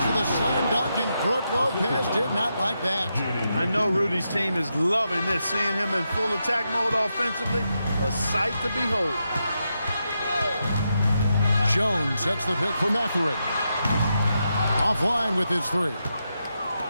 of the slam dunk, and Brook Lopez did not like that. I know Rudy's team is loving this, seeing him in full attack mode offensively, a sight to behold. Jones sets the pick for Mathurin. Offline with his 3.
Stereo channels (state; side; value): inverted; both; correlation -0.85